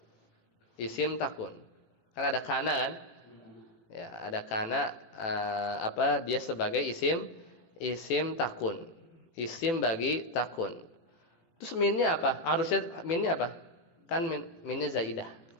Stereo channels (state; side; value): late; right; 18 ms